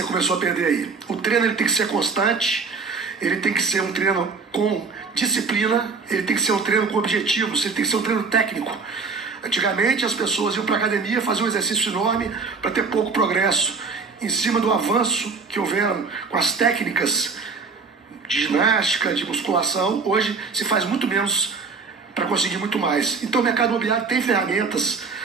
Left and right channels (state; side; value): quieter; left; 4.8 dB